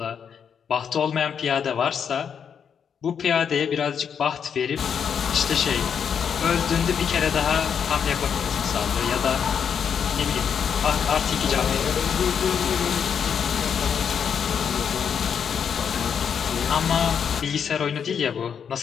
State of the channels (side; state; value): right; quieter; 7.4 dB